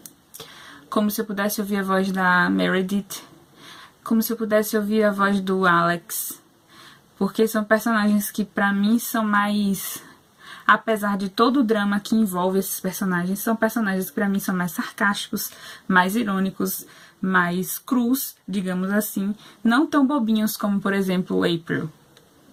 como se eu pudesse ouvir a voz da Meredith, como se eu pudesse ouvir a voz do Alex, porque são personagens que pra mim são mais, apesar de todo o drama que envolve esses personagens, são personagens que pra mim são mais sarcásticos, mais irônicos, mais crus, digamos assim, não tão bobinhos como, por exemplo, April,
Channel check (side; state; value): both; identical; correlation 1.00